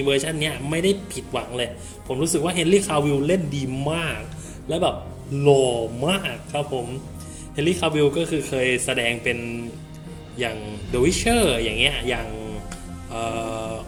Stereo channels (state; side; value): identical; both; correlation 1.00